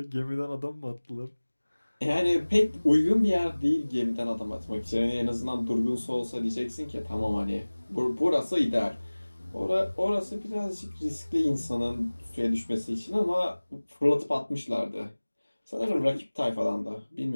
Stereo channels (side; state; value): both; inverted; correlation -1.00